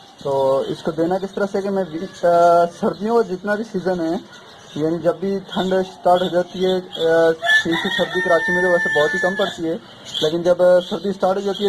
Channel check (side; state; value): both; identical; correlation 1.00